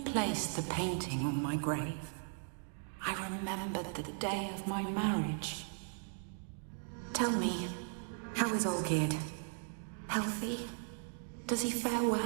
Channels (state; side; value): silent; left; 53 dB below the other